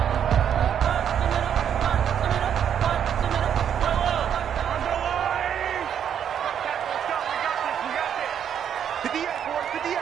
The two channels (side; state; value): left; quieter; 8.8 dB